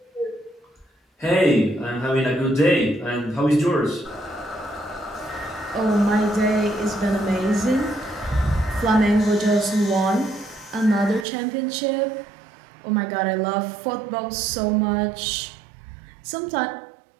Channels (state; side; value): drops out; left; at 11.2 s